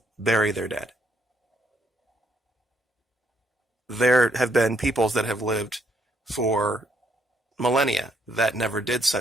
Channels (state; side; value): normal; both; correlation 0.72